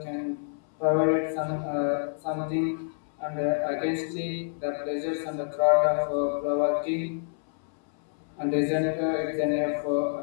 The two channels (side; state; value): right; silent; 60 dB below the other